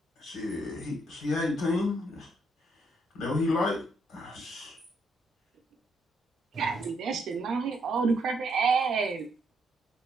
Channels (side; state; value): both; normal; correlation 0.74